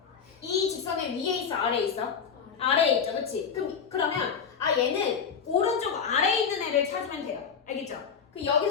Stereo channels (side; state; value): right; quieter; 6.6 dB